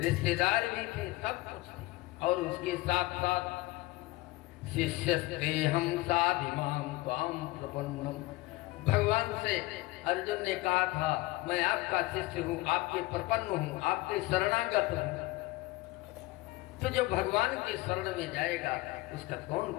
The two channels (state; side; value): quieter; right; 20.2 dB